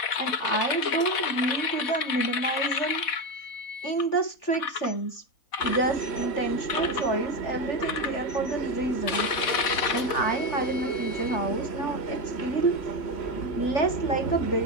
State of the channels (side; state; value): right; late; 4.1 ms